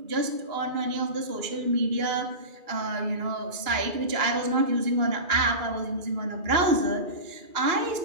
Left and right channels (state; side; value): late; left; 2.3 ms